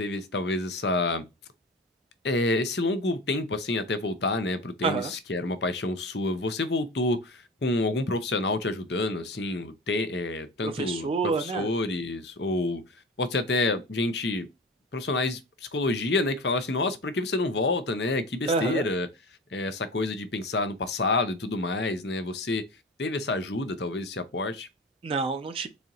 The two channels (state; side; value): normal; both; correlation 0.32